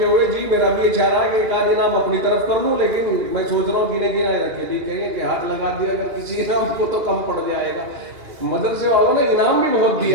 ہوئے، جی میرا بھی یہ چاہ رہا ہے کہ ایک آدھ انعام اپنی طرف کر لوں، لیکن میں سوچ رہا ہوں گنے رکھے، جی کہیں گے کہ ہاتھ لگا دیا اگر کسی انعام کو تو کم پڑ جائے گا۔ مدرسے والوں نے انعام بھی بہت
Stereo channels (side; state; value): left; late; 2.9 ms